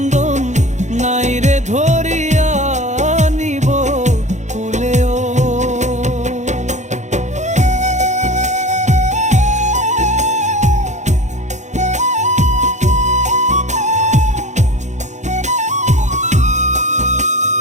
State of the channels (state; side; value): late; left; 0.34 ms